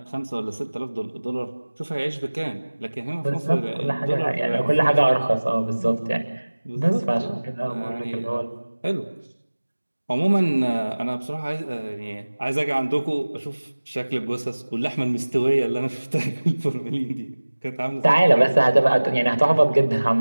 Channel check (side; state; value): both; inverted; correlation -1.00